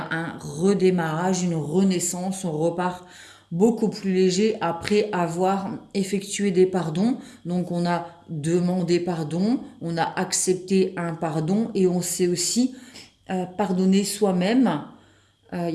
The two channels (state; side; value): identical; both; correlation 1.00